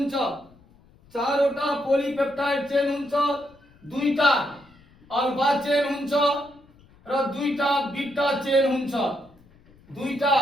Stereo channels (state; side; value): noise; left; rumble, 28 dB below the sound